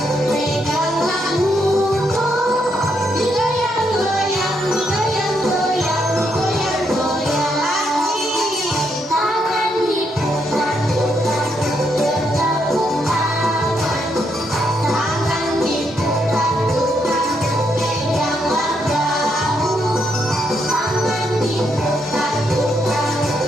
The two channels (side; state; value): both; normal; correlation 0.77